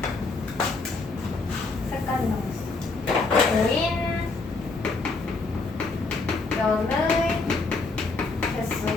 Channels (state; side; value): quieter; right; 3.8 dB